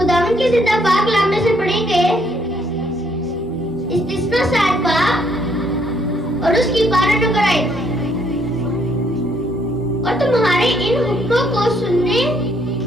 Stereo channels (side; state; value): right; noise; hum, 21 dB below the sound